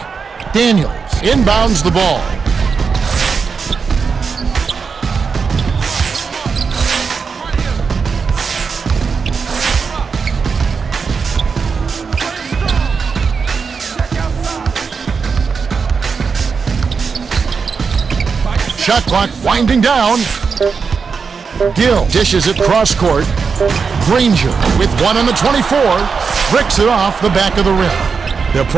Daniels inbounds the ball. Shot clock winding down. Gill dishes it cross court. Granger with one on the 24. Bricks it off the back of the rim. They'll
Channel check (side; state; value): left; quieter; 5.4 dB